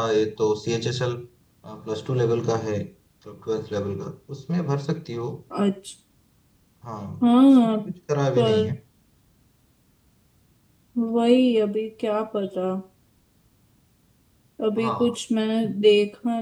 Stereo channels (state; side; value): identical; both; correlation 1.00